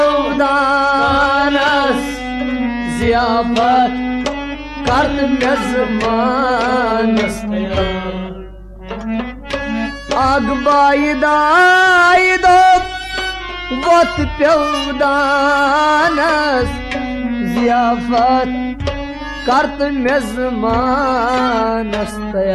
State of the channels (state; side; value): identical; both; correlation 1.00